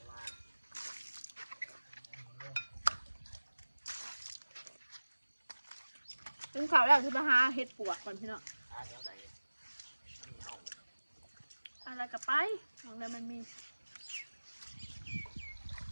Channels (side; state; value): both; inverted; correlation -1.00